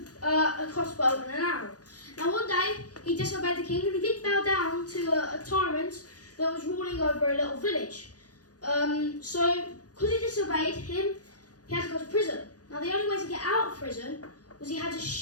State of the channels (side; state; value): right; late; 0.68 ms